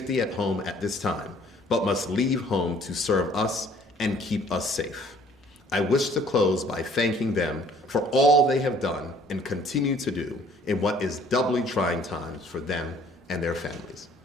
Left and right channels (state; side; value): normal; both; correlation 0.57